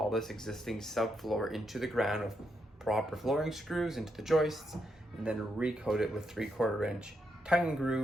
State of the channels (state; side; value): normal; both; correlation 0.81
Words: this existing subfloor into the ground with proper flooring screws into the joists, and then recoat it with 3/4 inch tongue and